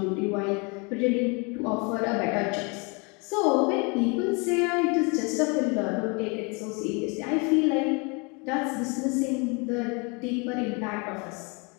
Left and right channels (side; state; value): right; quieter; 31.1 dB